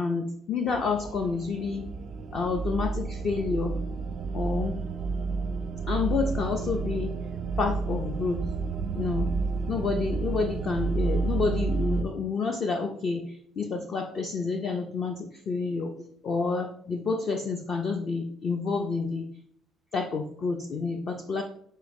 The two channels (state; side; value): normal; both; correlation 0.73